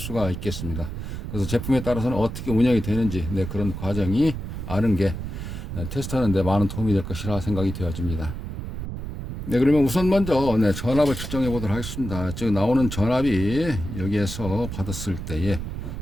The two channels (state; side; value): noise; right; rumble, 7 dB below the sound